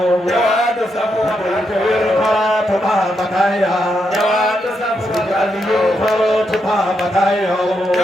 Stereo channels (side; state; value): both; normal; correlation 0.81